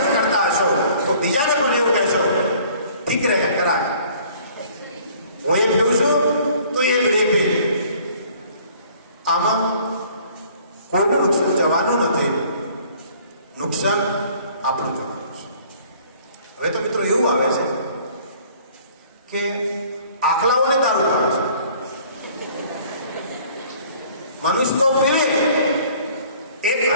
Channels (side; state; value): both; inverted; correlation -0.55